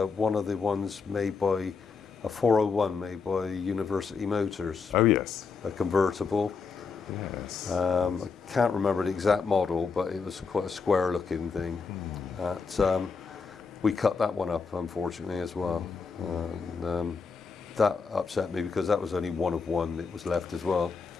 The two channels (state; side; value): quieter; right; 5.0 dB